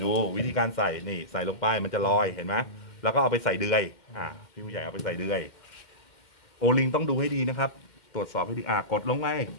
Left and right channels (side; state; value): right; late; 2.1 ms